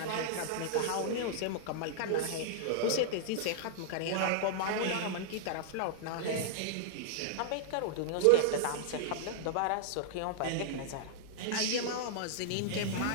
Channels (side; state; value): both; different; correlation -0.01